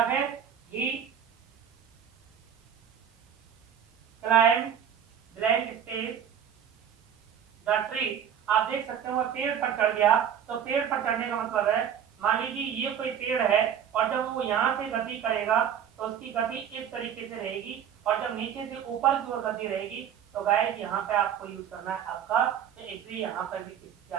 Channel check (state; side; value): quieter; left; 8.7 dB